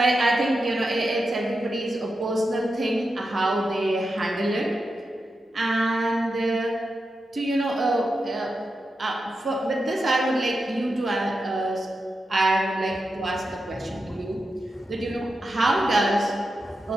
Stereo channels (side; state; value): both; normal; correlation 0.89